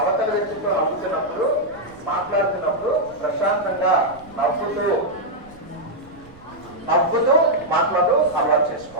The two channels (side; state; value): right; noise; rumble, 24 dB below the sound